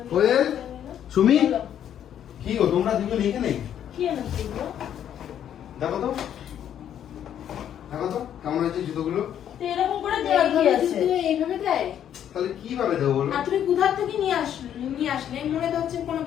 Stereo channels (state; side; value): quieter; right; 9.9 dB